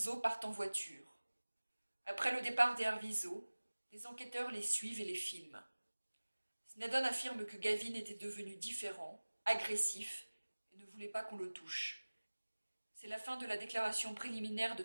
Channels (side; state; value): both; inverted; correlation -1.00